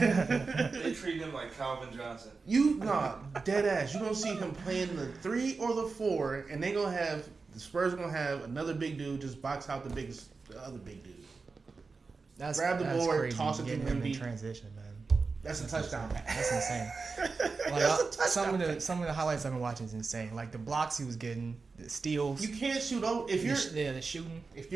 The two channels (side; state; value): left; quieter; 4.4 dB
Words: They treat him like Calvin Johnson. Dead ass. You're gonna see him playing the 3 or the 4, and the Spurs are gonna have another big dude just box out the other big dude. Grab the board, crazy. toss it to Getting him in Wemby. transition, man. That's a touchdown. That's insane. Some of the highlights I've been watching is insane. Like the blocks he was getting, the steals. You can't shoot over the shooting. If